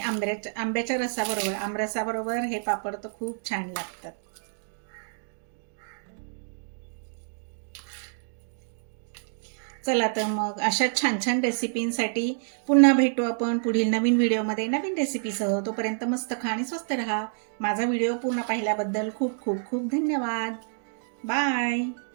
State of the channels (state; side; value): silent; left; digital silence